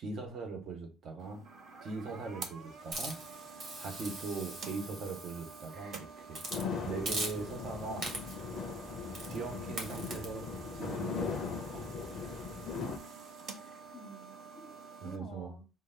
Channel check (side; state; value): both; normal; correlation 0.54